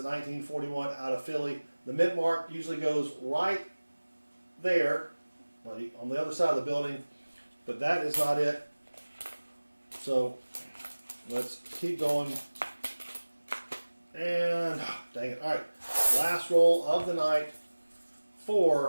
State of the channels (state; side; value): inverted; both; correlation -1.00